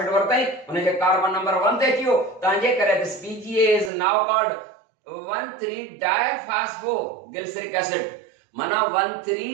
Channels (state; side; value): drops out; left; at 3.9 s